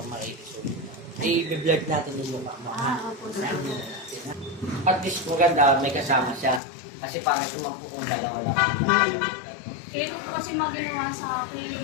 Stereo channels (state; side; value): drops out; right; at 6.6 s